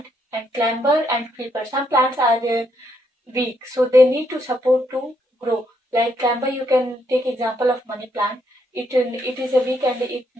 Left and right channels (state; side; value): normal; both; correlation 0.75